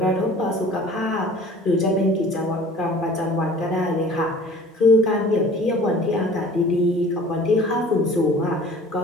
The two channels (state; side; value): normal; both; correlation 0.47